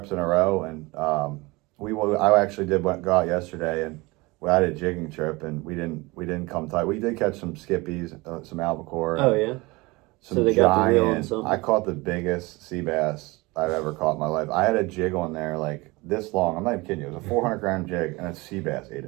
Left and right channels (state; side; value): quieter; left; 23.5 dB